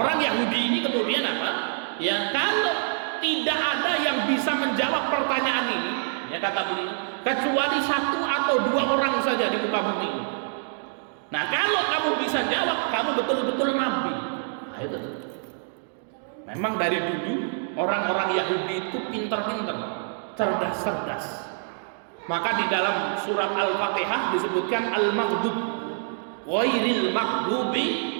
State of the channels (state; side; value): silent; left; digital silence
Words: Yahudi ini kemudian apa? Ya, kalau tidak ada yang bisa menjawab pertanyaan ini, ya kata beliau, kecuali 1 atau 2 orang saja di muka bumi ini. Nah, kalau kamu bisa jawab, kamu betul-betul nabi. Nah, itu. Memang dari dulu orang-orang Yahudi itu pintar-pintar, cerdas-cerdas. Maka di dalam surat Al-Fatihah disebutkan al-maghdub ghairil maghdubi